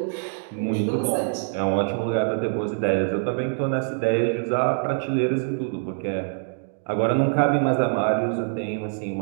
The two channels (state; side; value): silent; left; digital silence